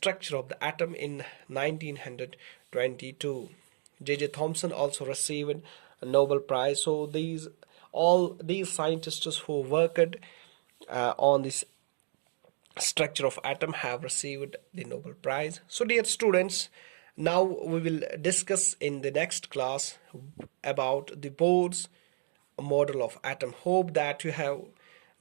of the atom in 1922. J.J. Thomson also received a Nobel Prize. So all these scientists who worked on this structure of atom have received the Nobel Prize. So dear students, Now we will discuss in the next class about the Bohr's model of atom. Hope that you have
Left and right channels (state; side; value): silent; left; digital silence